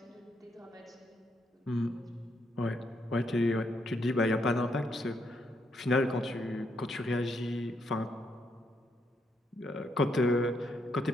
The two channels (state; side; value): normal; both; correlation 0.77